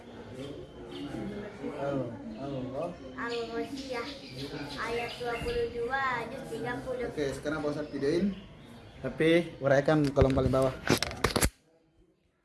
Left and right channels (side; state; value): both; identical; correlation 1.00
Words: Al-Ghasyiyah ayat 22 juz 30. Oke, sekarang Pak Ustadz videoin. Tapi uraikan kolom paling bawah.